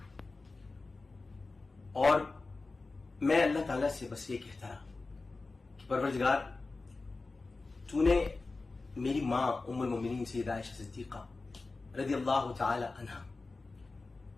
اور میں اللہ تعالیٰ سے بس یہ کہتا رہا کہ پروردگار، تو نے میری ماں ام المومنین سیدہ عائشہ صدیقہ رضی اللہ تعالی عنہا،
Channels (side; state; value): right; quieter; 3.6 dB